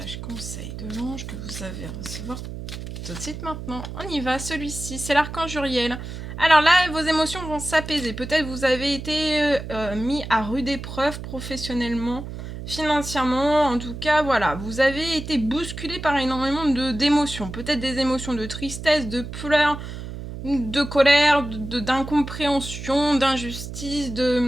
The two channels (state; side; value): noise; right; hum, 9 dB below the sound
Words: conseil de l'ange que vous avez à recevoir tout de suite maintenant. On y va, celui-ci, c'est l'archange Uriel. Alors là, vos émotions vont s'apaiser. Peut-être vous avez été mis à rude épreuve professionnellement, financièrement. En tout cas, voilà, vous avez été bousculé par énormément d'émotions. Peut-être des émotions de tristesse, de pleurs, de colère, d'incompréhension, d'injustice,